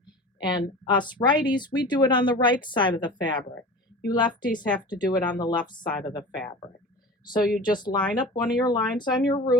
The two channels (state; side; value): normal; both; correlation 0.35